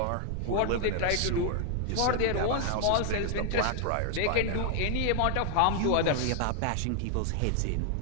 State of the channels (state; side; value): different; both; correlation 0.00